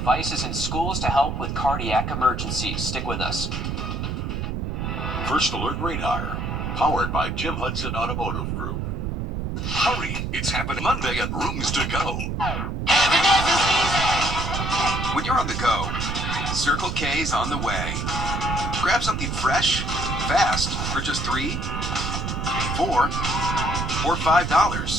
in schools to help with cardiac emergencies. Stick with us. First Alert Radar, powered by Jim Hudson Automotive Group. Hurry, it's happening Monday at Rooms to Go. When you're on the go, Circle K's on the way. Grab something fresh, fast, for just $3, $4, or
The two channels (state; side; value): noise; right; rumble, 2 dB below the sound